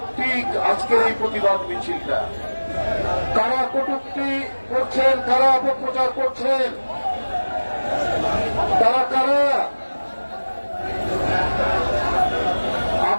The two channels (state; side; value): inverted; both; correlation -1.00